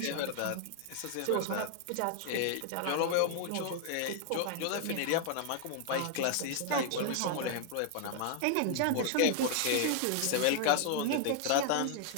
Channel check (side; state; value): both; different; correlation 0.00